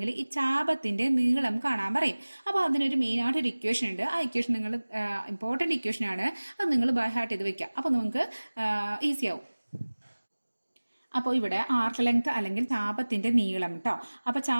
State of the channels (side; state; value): both; inverted; correlation -1.00